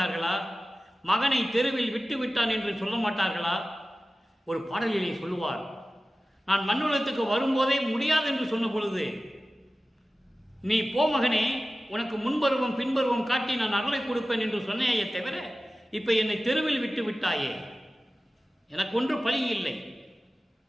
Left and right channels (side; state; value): both; normal; correlation 0.96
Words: மகனை தெருவில் விட்டு விட்டான் என்று சொல்ல மாட்டார்களா? ஒரு பாடலிலே சொல்லுவார், நான் மண்ணுலகத்துக்கு வரும்போதே முடியாது என்று சொன்ன பொழுது, நீ போ மகனே, உனக்கு முன்பருவம் பின்பருவம் காட்டி நான் அருளை கொடுப்பேன் என்று சொன்னேயே தவிர, இப்ப என்னை தெருவில் விட்டு விட்டாயே, எனக்கு ஒன்று பழி இல்லை.